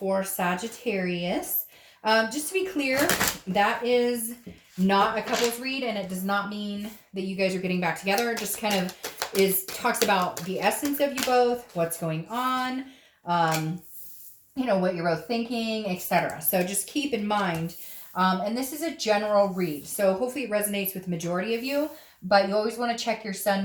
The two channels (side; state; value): both; identical; correlation 1.00